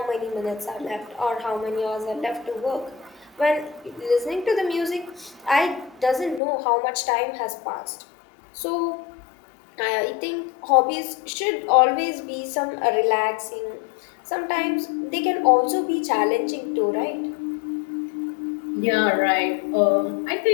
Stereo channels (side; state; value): right; drops out; at 6.4 s